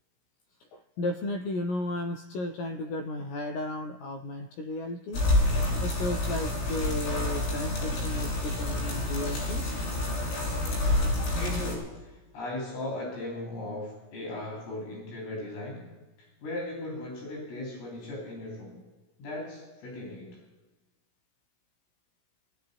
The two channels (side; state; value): right; late; 17 ms